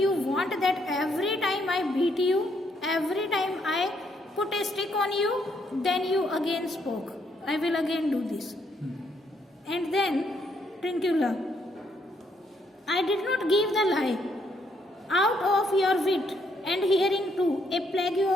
want that every time I beat you, every time I put a stick on you, then you again spoke. I will again do this. And then Trincula, I did not give the lie. Out of your wit and hearing too, a plague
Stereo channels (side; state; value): both; normal; correlation 0.72